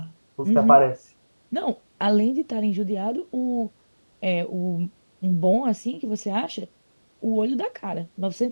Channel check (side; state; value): both; inverted; correlation -1.00